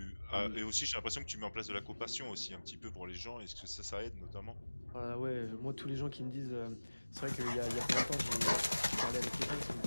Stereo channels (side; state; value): both; inverted; correlation -1.00